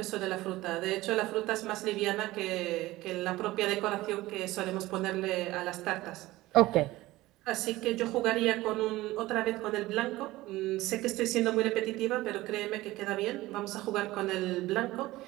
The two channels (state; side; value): quieter; left; 18.1 dB